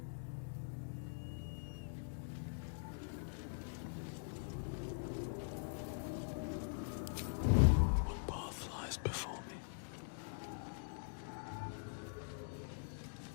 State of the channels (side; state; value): right; silent; digital silence